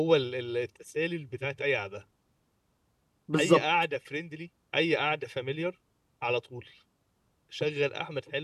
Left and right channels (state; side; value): identical; both; correlation 1.00